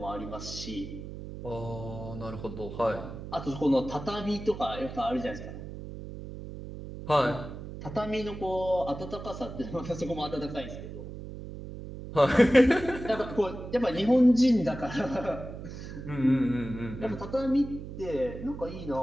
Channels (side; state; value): right; noise; hum, 10 dB below the sound